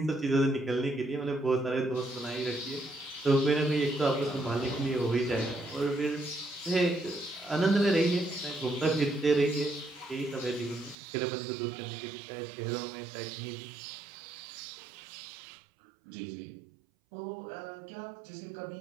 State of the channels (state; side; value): drops out; left; at 11.0 s